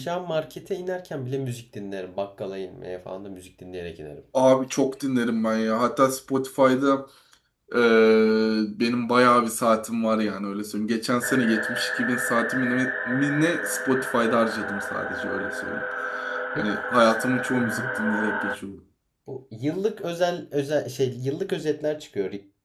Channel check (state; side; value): identical; both; correlation 1.00